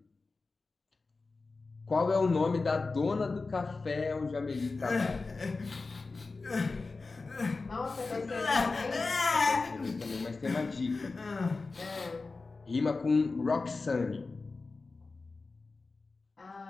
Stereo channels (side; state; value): right; quieter; 3.9 dB